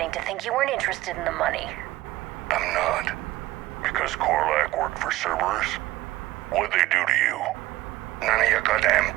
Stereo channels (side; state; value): left; quieter; 16.7 dB